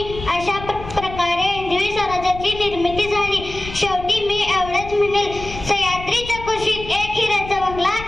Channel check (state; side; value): noise; left; rumble, 12 dB below the sound